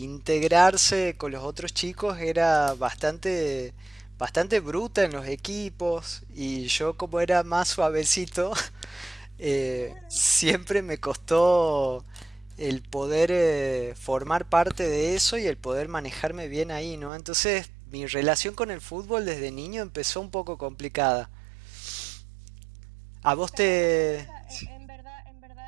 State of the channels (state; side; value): drops out; left; at 17.1 s